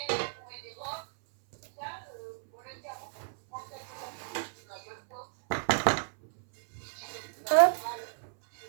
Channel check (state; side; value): silent; left; 56 dB below the other